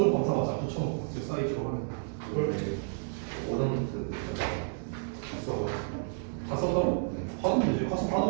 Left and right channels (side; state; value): left; silent; 57 dB below the other